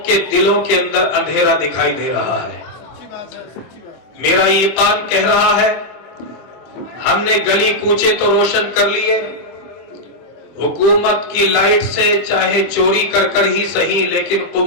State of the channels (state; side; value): late; right; 24 ms